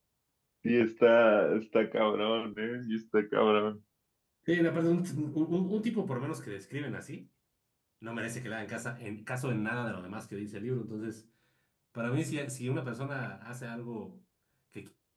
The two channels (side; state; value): both; identical; correlation 1.00